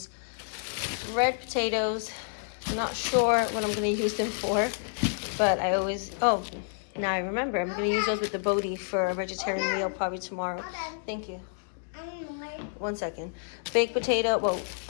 potatoes. I'm not sure what I'm going to use them for, but I always, oh, now I remember. I'm going to use those with the Bodhi for a vegetarian meal probably tomorrow. Thank you. 1 second. Baked potato, well,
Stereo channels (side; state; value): right; silent; digital silence